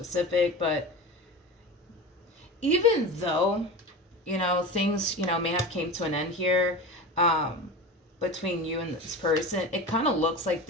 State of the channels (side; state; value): both; normal; correlation 0.30